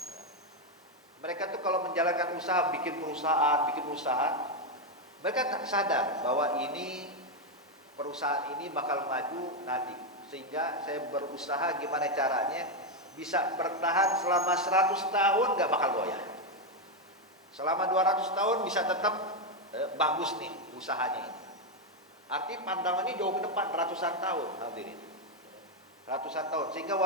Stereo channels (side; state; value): both; normal; correlation 0.05